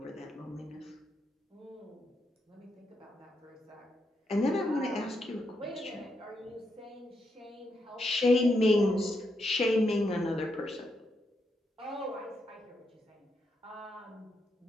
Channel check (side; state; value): both; normal; correlation 0.81